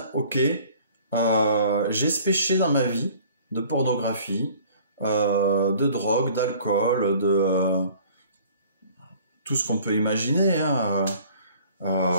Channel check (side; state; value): both; inverted; correlation -0.51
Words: ok, j'ai ce péché dans ma vie, de pornographie, de drogue, d'alcool, de tout ce qu'on peut imaginer, hein,